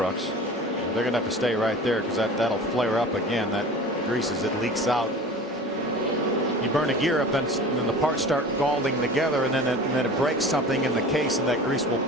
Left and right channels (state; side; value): normal; both; correlation 0.38